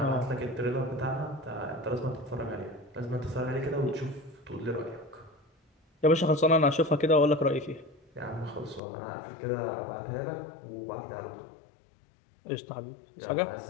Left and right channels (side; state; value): right; drops out; at 8.8 s